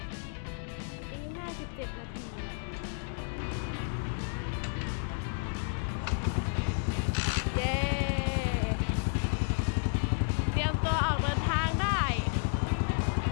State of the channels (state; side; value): silent; right; 57 dB below the other